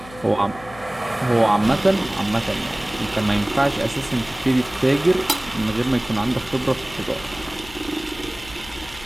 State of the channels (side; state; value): left; noise; hum, 19 dB below the sound